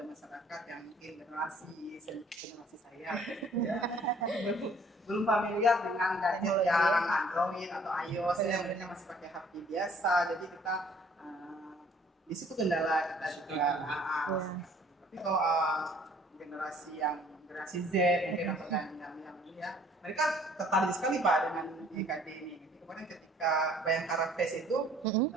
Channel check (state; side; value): normal; both; correlation 0.57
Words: masyarakat yang mungkin generasi saya belum familiar dengan gadget yang Android atau iOS yang mereka masih pakai HP biasa, jadi kita di situ kendala kita juga. Tapi kalau generasi Z mungkin atau yang ya mereka tertarik sekali Pak dengan IKD ini. Kemarin ketika Bayangkara Fest itu